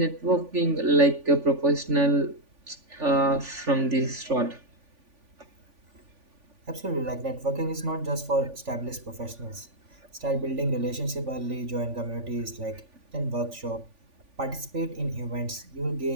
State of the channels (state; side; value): late; left; 3.5 ms